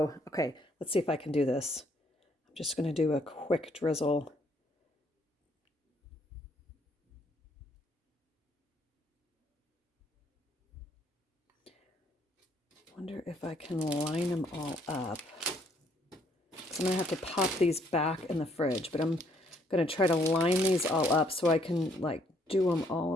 okay, let's see if I can do this. I'm just going to do a quick drizzle. Wonder if I can line them all up. So I'm going to have to pop these back in the fridge, but I'm going to try to line these all up so I can like do them all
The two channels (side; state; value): both; normal; correlation 0.67